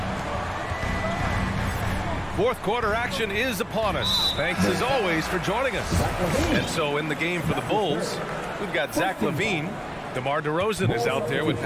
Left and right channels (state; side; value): identical; both; correlation 1.00